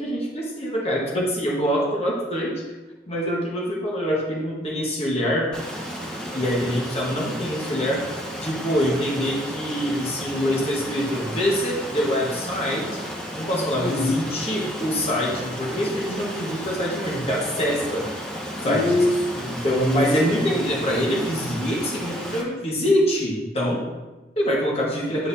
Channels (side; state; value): both; normal; correlation 0.62